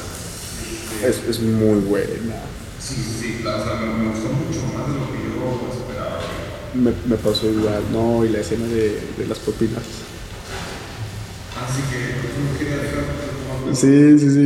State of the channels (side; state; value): both; identical; correlation 1.00